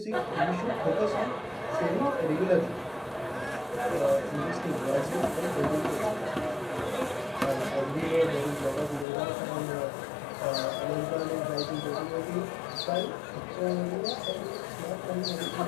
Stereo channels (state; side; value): drops out; right; at 9.1 s